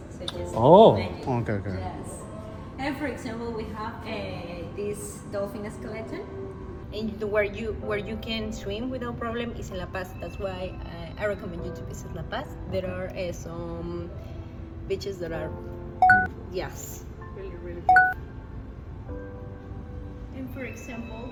so just imagine. Okay. Yes. And for example, we have this dolphin skeleton. And where you can swim without problem is in La Paz. That's why I recommend you to visit La Paz. There are some beaches that are really beautiful. And for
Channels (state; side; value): identical; both; correlation 1.00